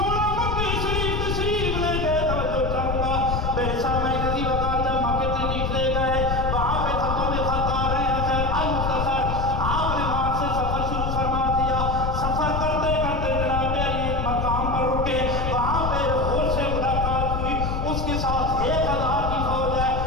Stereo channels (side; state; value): left; noise; rumble, 1 dB below the sound